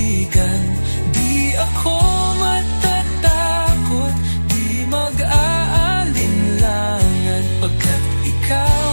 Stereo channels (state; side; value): inverted; both; correlation -1.00